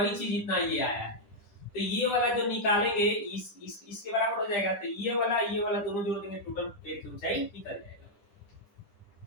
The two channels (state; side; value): late; right; 10 ms